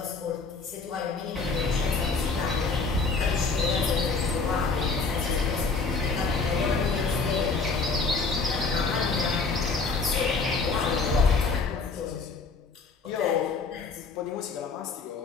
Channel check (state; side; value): quieter; right; 4.3 dB